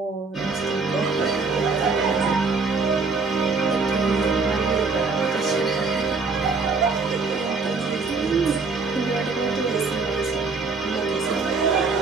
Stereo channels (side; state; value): left; quieter; 4.3 dB